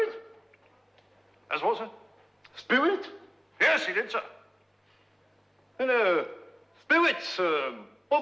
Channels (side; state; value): both; identical; correlation 1.00